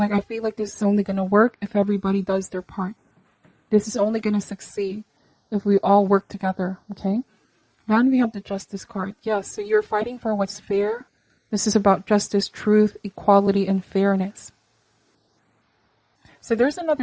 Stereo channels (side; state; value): both; identical; correlation 1.00